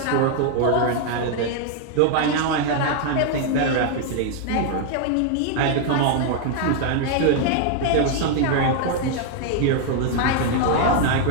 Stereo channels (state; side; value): different; both; correlation 0.00